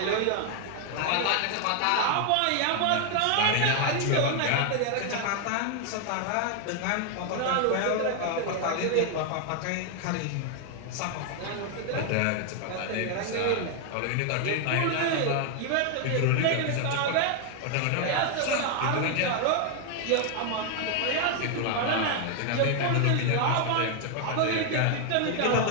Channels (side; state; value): both; different; correlation 0.00